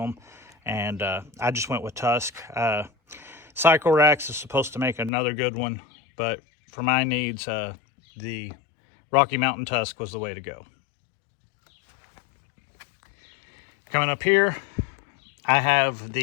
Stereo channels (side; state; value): right; drops out; at 5.1 s